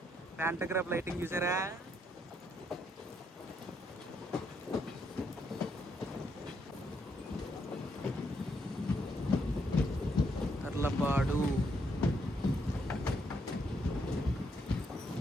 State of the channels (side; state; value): both; normal; correlation 0.75